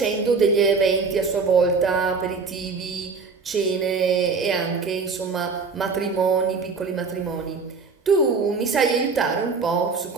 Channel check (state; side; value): quieter; left; 4.7 dB